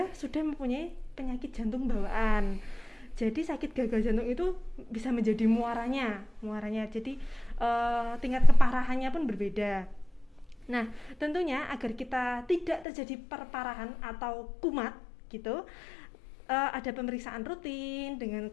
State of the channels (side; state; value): right; drops out; at 12.9 s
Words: sudah mempunyai penyakit jantung bawaan. Jadi sakit gagal jantung itu bisa menjadi muaranya. Jadi tingkat keparahannya pun berbeda. Nah, tentunya agar kita tidak terjadi perparahan atau kumat gitu, ada pemeriksaan rutin dengan